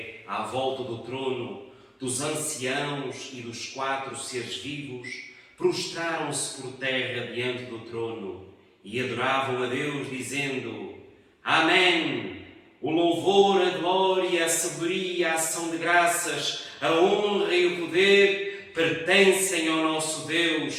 à volta do trono, dos anciãos e dos 4 seres vivos, prostraram-se por terra diante do trono e adoravam a Deus, dizendo: Amém! O louvor, a glória, a sabedoria, a ação de graças, a honra e o poder pertencem ao nosso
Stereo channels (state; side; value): identical; both; correlation 1.00